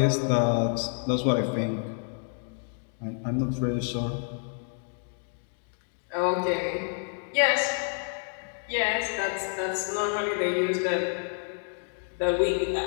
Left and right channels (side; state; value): right; silent; 59 dB below the other